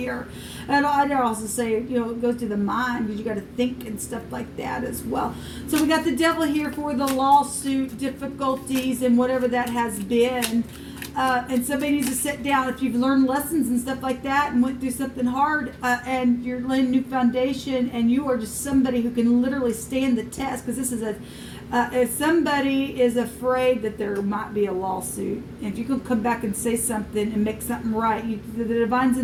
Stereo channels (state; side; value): identical; both; correlation 1.00